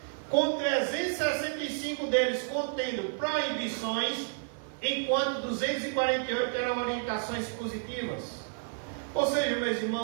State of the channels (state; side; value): silent; left; 57 dB below the other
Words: com 365 deles contendo proibições, enquanto 248 eram orientações positivas. Ou seja, meus